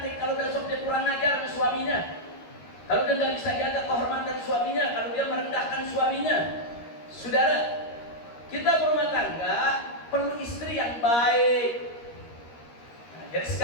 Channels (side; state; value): right; late; 13 ms